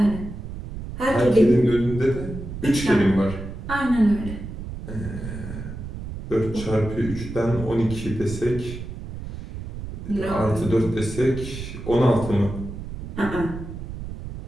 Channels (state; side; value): noise; right; rumble, 9 dB below the sound